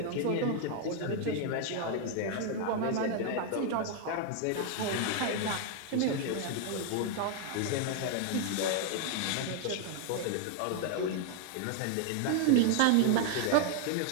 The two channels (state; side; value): different; both; correlation 0.00